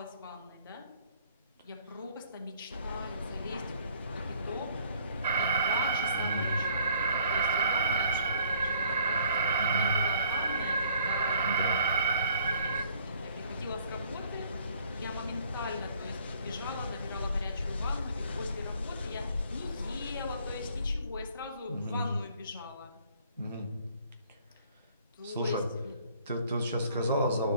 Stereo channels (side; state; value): both; inverted; correlation -0.61